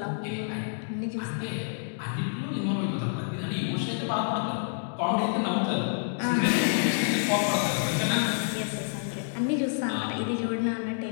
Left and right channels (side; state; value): right; silent; digital silence